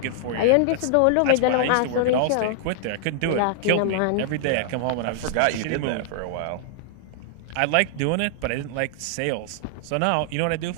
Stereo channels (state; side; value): different; both; correlation -0.01